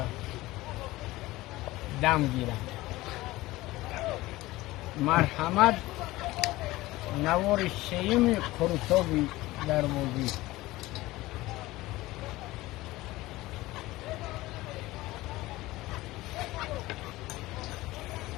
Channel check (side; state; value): right; quieter; 18.6 dB